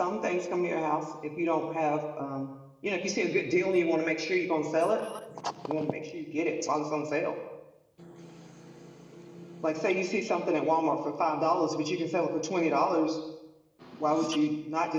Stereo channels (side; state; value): both; identical; correlation 1.00